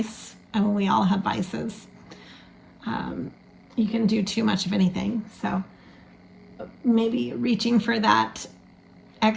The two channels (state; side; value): identical; both; correlation 1.00